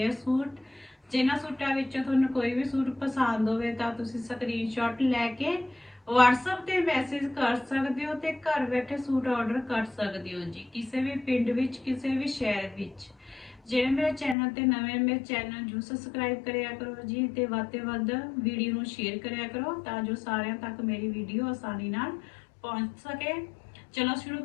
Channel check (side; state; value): right; drops out; at 14.4 s